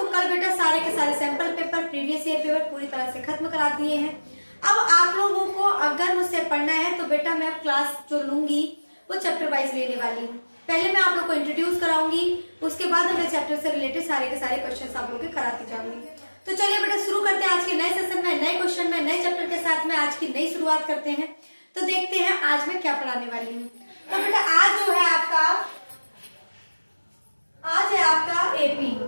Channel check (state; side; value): inverted; both; correlation -1.00